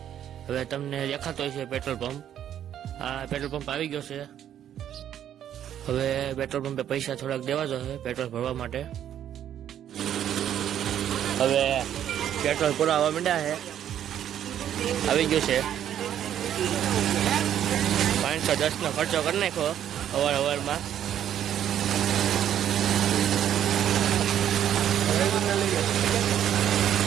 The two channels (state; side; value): quieter; left; 10.4 dB